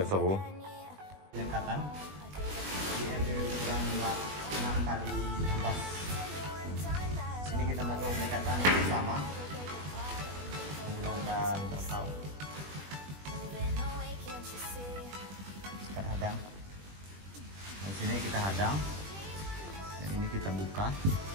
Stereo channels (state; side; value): late; left; 20 ms